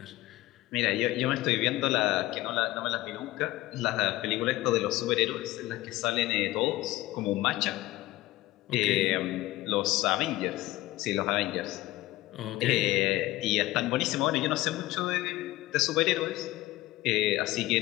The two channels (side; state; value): right; quieter; 17.6 dB